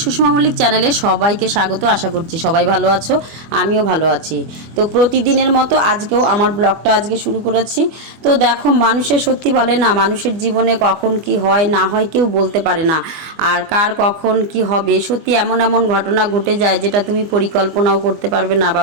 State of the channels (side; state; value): left; late; 24 ms